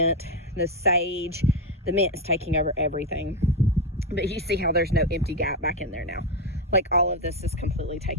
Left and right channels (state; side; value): normal; both; correlation 0.08